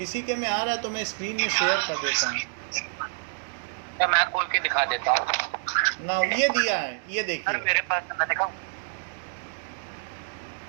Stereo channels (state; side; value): silent; left; digital silence